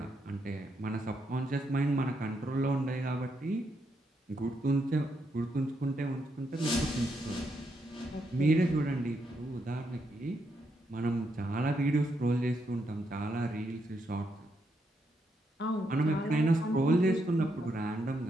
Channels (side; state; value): both; normal; correlation 0.79